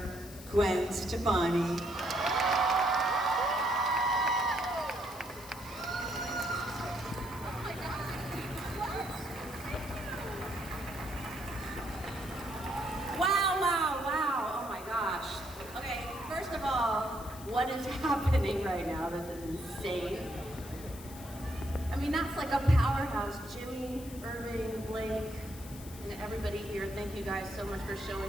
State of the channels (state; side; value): noise; left; hiss, 16 dB below the sound